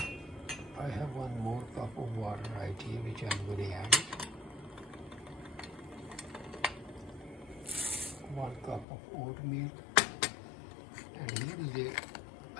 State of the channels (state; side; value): drops out; right; at 8.8 s